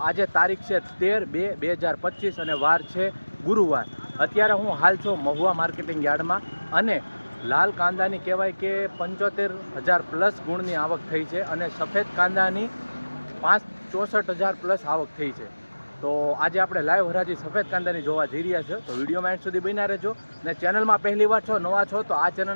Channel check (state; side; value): inverted; both; correlation -1.00